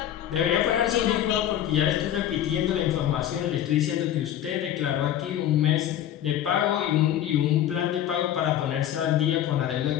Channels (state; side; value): quieter; right; 11.3 dB